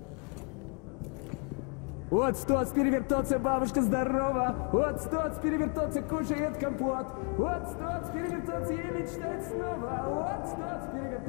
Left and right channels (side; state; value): right; quieter; 38.0 dB